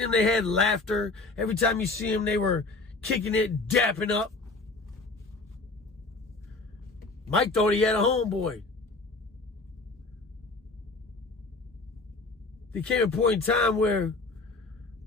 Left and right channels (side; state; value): right; quieter; 3.5 dB